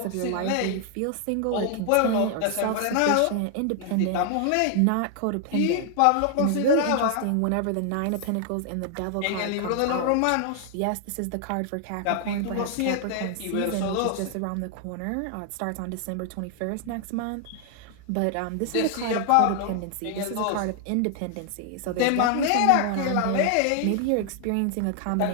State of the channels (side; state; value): both; different; correlation 0.00